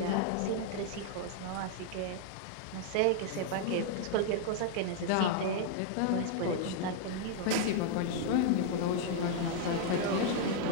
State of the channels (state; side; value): different; both; correlation -0.01